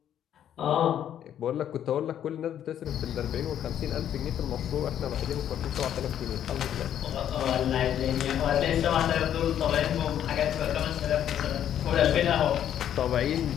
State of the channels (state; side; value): quieter; right; 10.2 dB